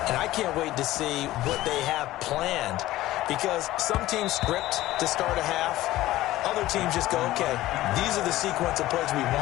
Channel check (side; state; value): right; quieter; 16.0 dB